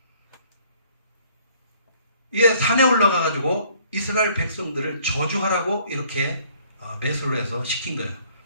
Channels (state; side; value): inverted; both; correlation -0.60